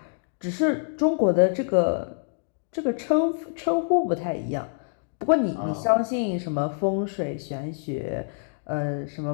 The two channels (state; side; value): silent; right; digital silence